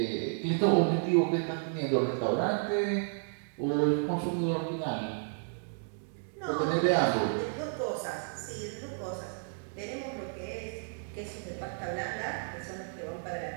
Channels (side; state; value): left; silent; digital silence